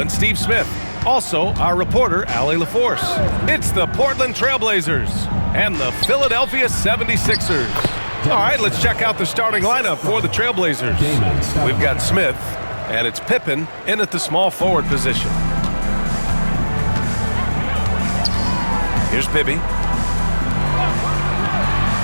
Steve Smith. Also, our reporter, Allie LaForce. It's the Portland Trailblazers and the Philadelphia 76ers. All right, let's check out the starting lineup for the Trailblazers. We've got Smith, and it's Pippen in at the small forward position. Here's Bibby.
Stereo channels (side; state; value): both; inverted; correlation -1.00